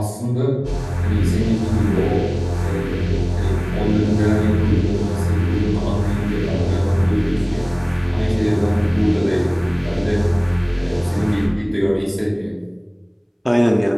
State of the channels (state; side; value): identical; both; correlation 1.00